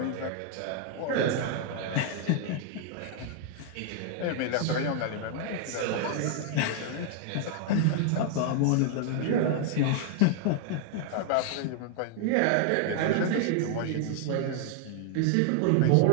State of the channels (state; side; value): different; both; correlation 0.00